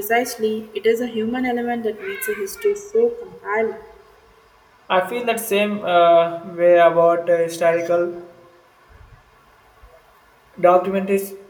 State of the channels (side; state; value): both; identical; correlation 1.00